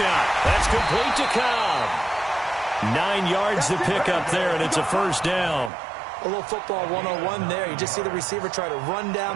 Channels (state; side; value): drops out; left; at 5.7 s